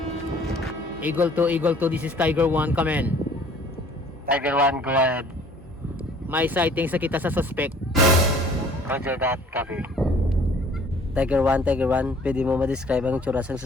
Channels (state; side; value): normal; both; correlation 0.54